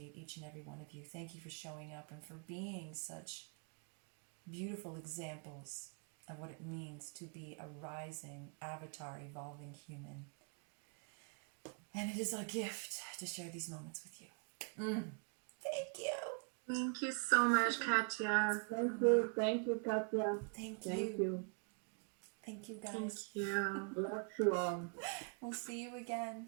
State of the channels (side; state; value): left; quieter; 39.5 dB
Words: each and every one of you. Thank you for showing up and for being such beautiful examples of what it means to be a rising avatar, evolving human. And it is a gift to share these moments with you. Thank you. Thank you so much, Katya. Thank you, Katya. Thank Thank you. you. Thank you, Thank guys. you. Bless you all. We'll see you